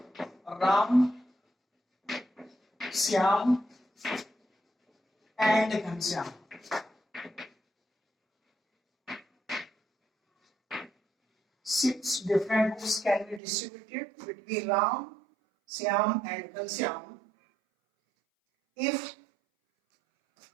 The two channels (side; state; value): left; drops out; at 13.4 s